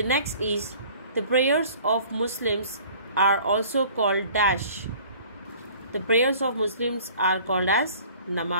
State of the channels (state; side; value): inverted; both; correlation -0.50